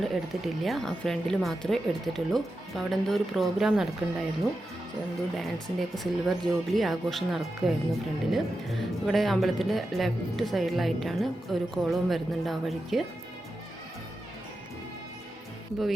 എടുത്തിട്ടില്ല. ആ ഫ്രണ്ടിൽ മാത്രമേ എടുത്തിട്ടുള്ളൂ. അപ്പോൾ അവിടെ എന്തോ ഒരു പ്രോഗ്രാം നടക്കുന്നുണ്ടായിരുന്നു. എന്തോ ഡാൻസിൻ്റെയൊക്കെ സിൽവർ ജൂബിലി ആഘോഷം നടക്കുകയായിരുന്നു ഫ്രണ്ടിൽ. ഇവിടെ അമ്പലത്തിൻ്റെ ലെഫ്റ്റ് സൈഡിലായിട്ടാണ് ഒരു കോളവും വരുന്നുണ്ട് ആ വഴിക്ക്. ഇപ്പോൾ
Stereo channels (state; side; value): normal; both; correlation 0.90